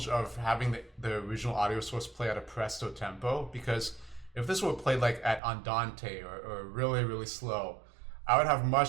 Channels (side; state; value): left; drops out; at 5.4 s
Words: of having the original audio source play at a presto tempo, because if this were played like at andante or really, really slow, I would have